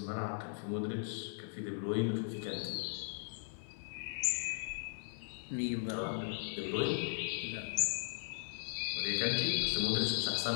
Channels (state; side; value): silent; right; digital silence